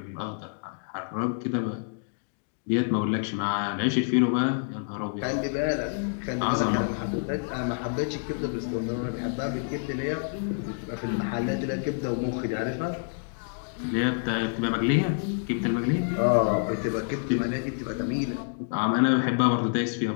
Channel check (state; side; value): silent; right; digital silence